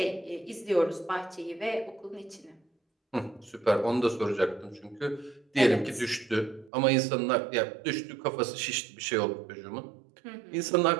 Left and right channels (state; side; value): drops out; left; at 6.7 s